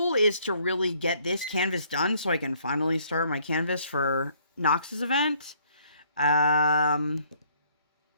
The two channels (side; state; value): both; inverted; correlation -0.64